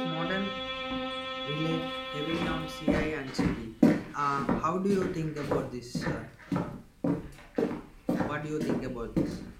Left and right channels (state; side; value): identical; both; correlation 1.00